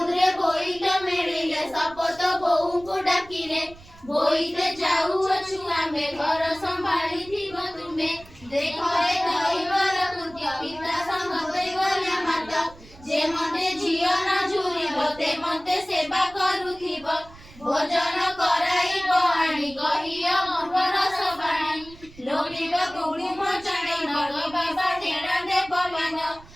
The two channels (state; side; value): noise; right; rumble, 22 dB below the sound